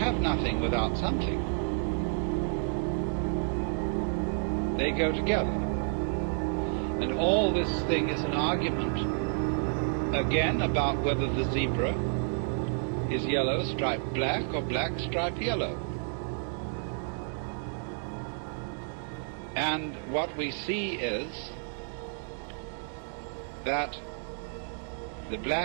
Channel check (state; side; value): silent; left; 58 dB below the other